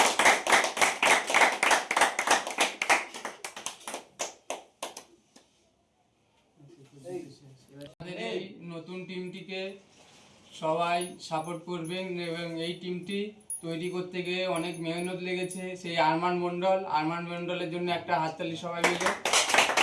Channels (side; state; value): both; identical; correlation 1.00